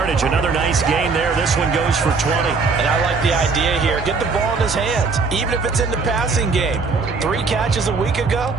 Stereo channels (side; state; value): left; quieter; 4.5 dB